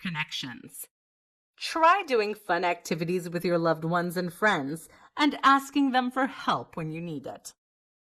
Try doing fun activities with your loved ones and friends and asking them for help when you need it.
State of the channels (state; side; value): identical; both; correlation 1.00